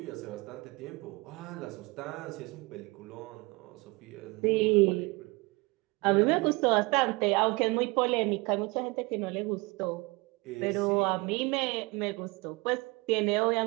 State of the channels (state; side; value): quieter; left; 25.1 dB